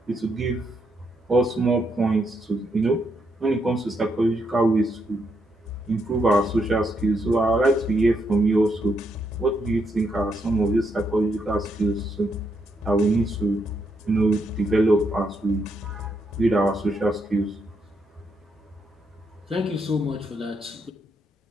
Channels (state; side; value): normal; both; correlation 0.78